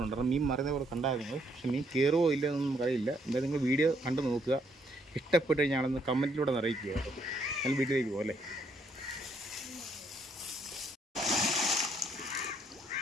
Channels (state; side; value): normal; both; correlation 0.71